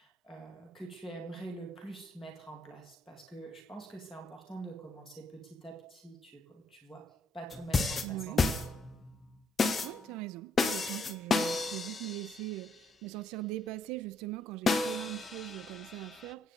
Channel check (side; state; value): both; normal; correlation 0.73